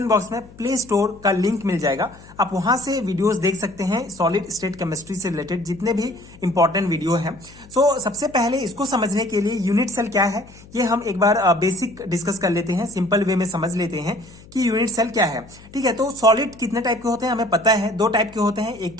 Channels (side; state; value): left; noise; hum, 22 dB below the sound